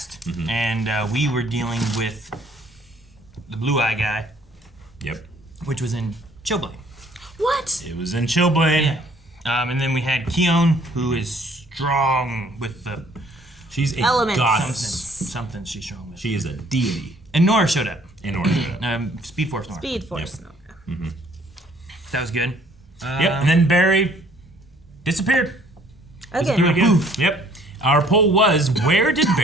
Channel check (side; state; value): both; normal; correlation 0.60